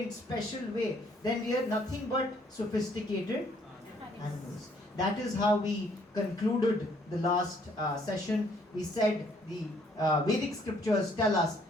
special way, then we are nothing but sophisticated animals. That is how we concluded the last session. We said the Vedic scriptures tell us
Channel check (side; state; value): both; normal; correlation 0.65